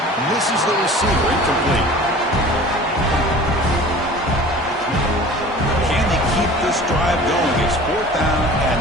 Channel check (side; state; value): both; normal; correlation 0.43